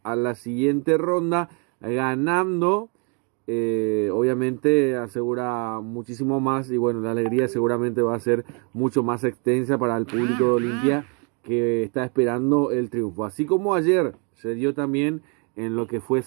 a la siguiente ronda, ganando. Obviamente asegura muchísimo más, y bueno, la alegría seguramente va a ser mucho más extensa para el público de Olimpia, que está esperando el triunfo. Así como ayer se dio también en lo que fue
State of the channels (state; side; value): quieter; left; 35.8 dB